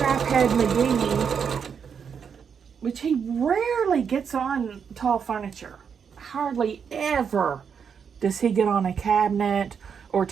McGee, which he rarely gets on tall furniture. Hardly ever does he get on a cabinet or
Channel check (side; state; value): left; quieter; 6.9 dB